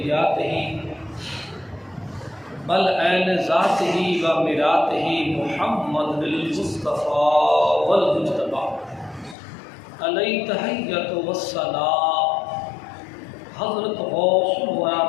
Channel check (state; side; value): drops out; right; at 9.3 s